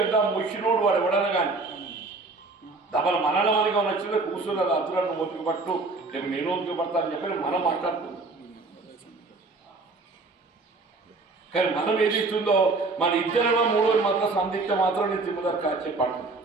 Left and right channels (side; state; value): left; quieter; 3.6 dB